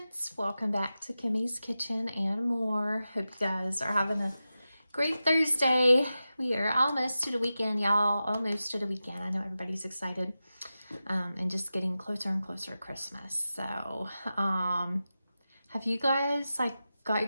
welcome back to Kimmy's Kitchen and more. Hope you guys are having a great Thursday. We are almost to the weekend, y'all. Almost to the weekend. I know everybody's excited and just getting closer and closer to Christmas. So, have you guys got your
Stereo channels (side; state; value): both; inverted; correlation -0.93